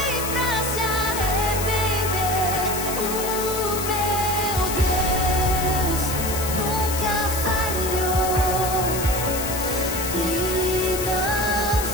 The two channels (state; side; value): noise; left; hiss, 5 dB below the sound